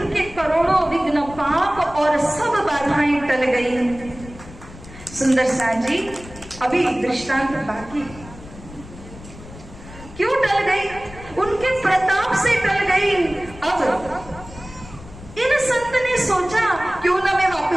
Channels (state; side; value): noise; left; rumble, 17 dB below the sound